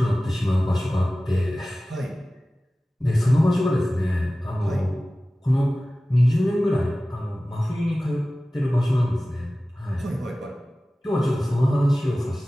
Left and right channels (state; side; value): normal; both; correlation 0.97